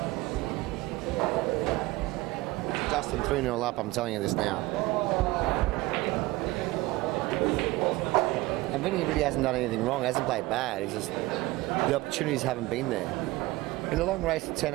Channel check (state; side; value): quieter; left; 19.9 dB